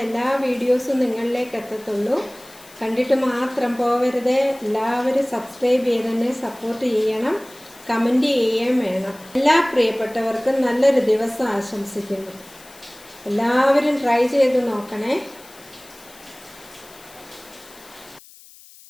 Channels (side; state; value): left; noise; hiss, 22 dB below the sound